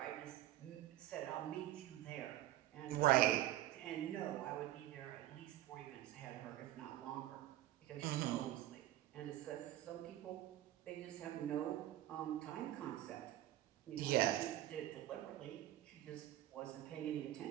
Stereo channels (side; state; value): left; quieter; 14.0 dB